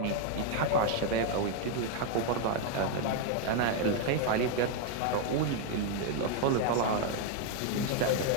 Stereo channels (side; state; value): both; different; correlation 0.01